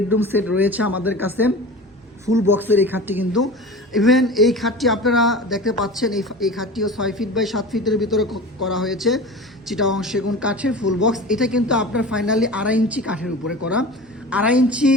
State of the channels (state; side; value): normal; both; correlation 0.34